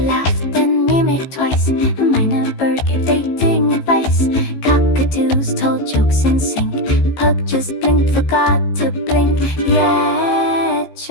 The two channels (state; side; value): late; right; 15 ms